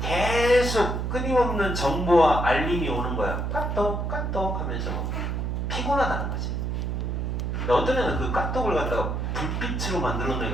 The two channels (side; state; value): right; noise; hum, 1 dB below the sound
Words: 계속 끊임없는 정보와 알림이 오는 거야. 까똑 하면서 피곤하다는 거지. 어떤 애는 그 까똑을 갖다가 불빛으로 만들어